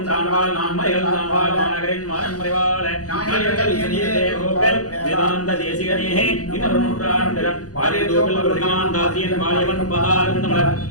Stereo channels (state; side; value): late; right; 0.67 ms